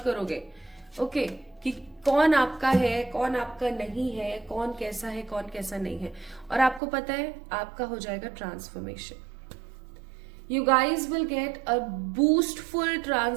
ओके, कि कौन आपका है, कौन आपका नहीं है, कौन कैसा है, कौन कैसा नहीं है। और आपको पता है आपका हो जाएगा transformation. You guys will get a boostful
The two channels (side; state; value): left; drops out; at 6.8 s